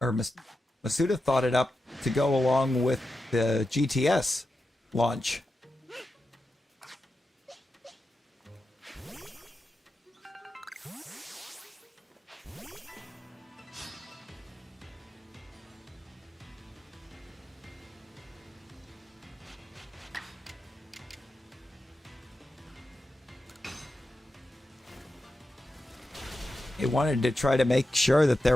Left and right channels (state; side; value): normal; both; correlation 0.90